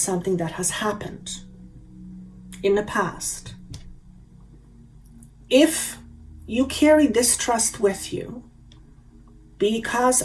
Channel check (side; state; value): both; identical; correlation 1.00